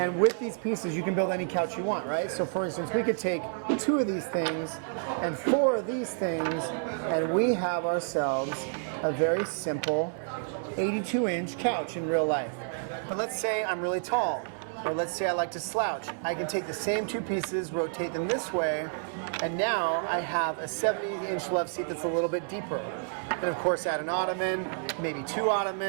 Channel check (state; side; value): silent; left; 58 dB below the other